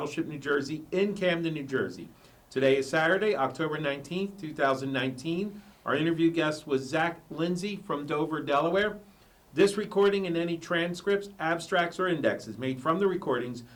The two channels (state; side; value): identical; both; correlation 1.00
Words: New Jersey in Camden, New Jersey. Today is Saturday, October 19th, 2019. Our interview guest was Lindsay from Dover, Delaware. This recording and any transcripts, abstracts, or indexes made from the recordings